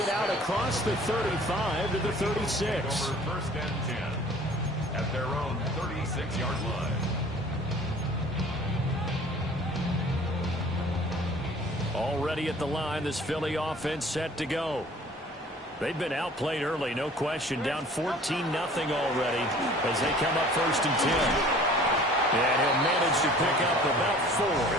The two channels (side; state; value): both; normal; correlation 0.49